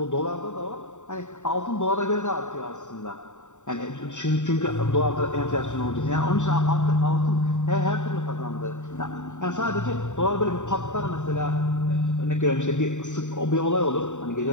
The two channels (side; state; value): right; late; 0.85 ms